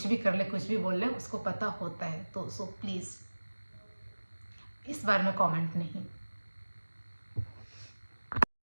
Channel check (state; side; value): inverted; both; correlation -1.00